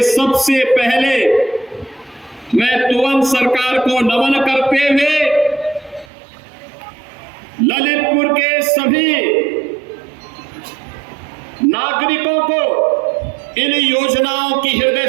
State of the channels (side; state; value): left; drops out; at 6.1 s